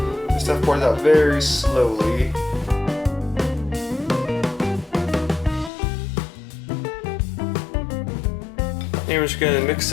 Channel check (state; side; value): drops out; right; at 5.7 s